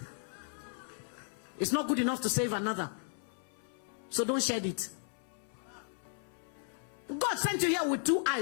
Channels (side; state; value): right; silent; 54 dB below the other